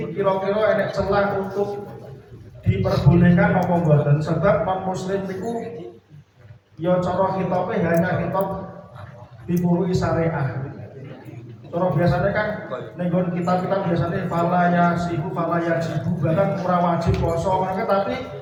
kira-kira ada celah untuk diperbolehkan apa mboten, sebab non muslim itu ya cara khitabe hanya khitab dipurui syariah. Cara biasanya kan nenggon kita biasanya fala ya jibu, bahkan ora wajib poso mereka, tapi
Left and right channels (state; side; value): identical; both; correlation 1.00